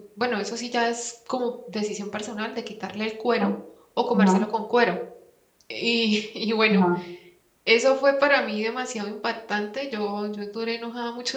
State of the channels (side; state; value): both; identical; correlation 1.00